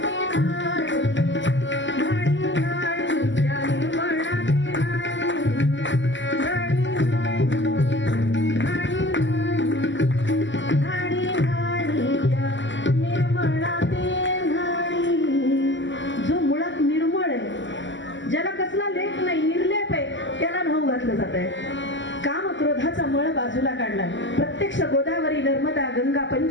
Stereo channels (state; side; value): late; right; 0.54 ms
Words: ज्याला कसला लेख नाही, निर्लेप आहे, त्याला न्हाऊ घातलं जात आहे. काम क्रोधाचा मळ बाजूला काढला. प्रत्यक्ष गोदावरी, नर्मदा, गंगा,